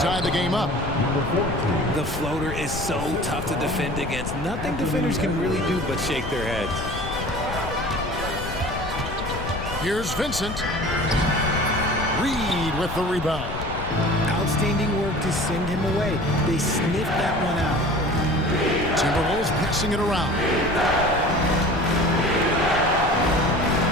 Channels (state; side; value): noise; left; rumble, 8 dB below the sound